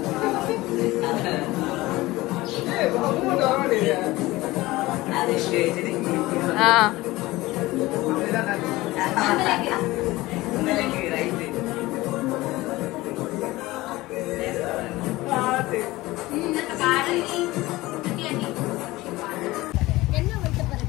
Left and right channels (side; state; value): right; quieter; 19.2 dB